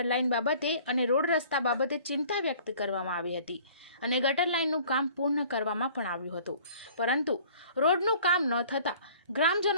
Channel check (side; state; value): both; inverted; correlation -0.51